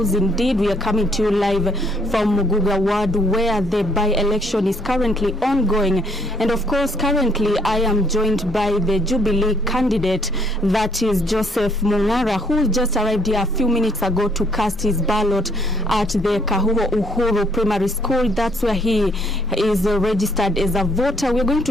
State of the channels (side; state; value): both; normal; correlation 0.66